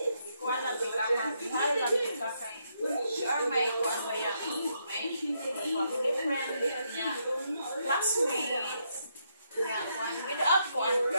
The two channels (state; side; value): inverted; both; correlation -0.77